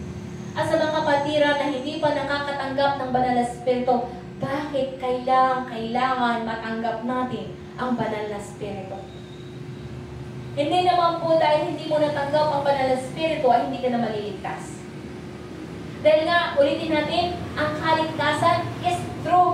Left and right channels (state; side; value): identical; both; correlation 1.00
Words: At sa mga kapatiran na hindi pa nakakatanggap ng banal na Espiritu, bakit kailangan matanggap natin ang banal na Espiritu? Hindi naman po dahil hindi mo natanggap ang banal na Espiritu ay hindi ka na maliligtas. Dahil nga, ulitin natin, ang kaligtasan is